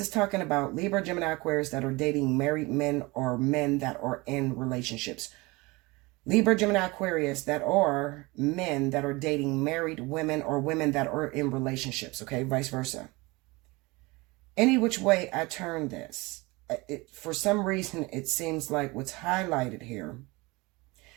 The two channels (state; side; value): quieter; left; 23.8 dB